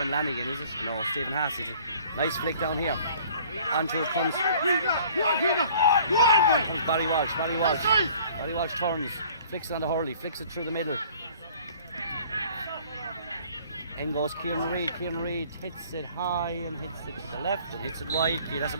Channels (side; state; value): both; inverted; correlation -0.53